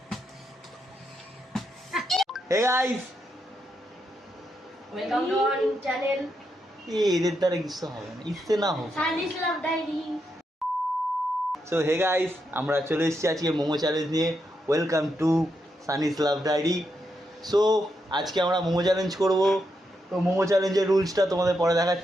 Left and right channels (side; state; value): both; normal; correlation 0.82